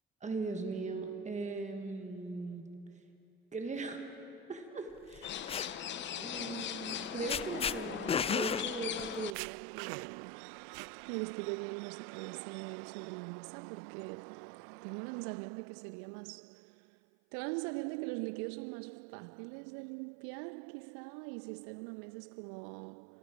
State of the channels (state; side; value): drops out; left; at 9.3 s